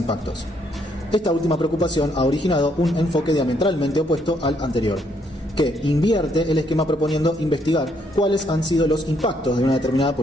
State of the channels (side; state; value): both; normal; correlation 0.71